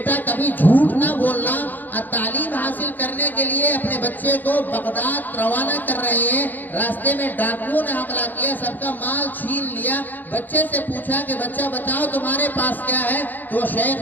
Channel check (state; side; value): late; right; 0.086 ms